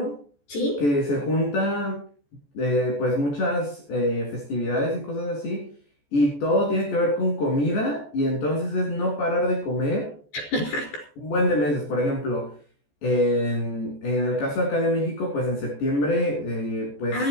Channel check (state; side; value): late; right; 14 ms